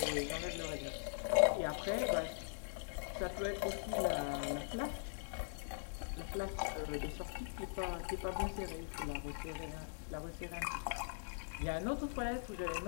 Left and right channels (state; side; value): silent; right; digital silence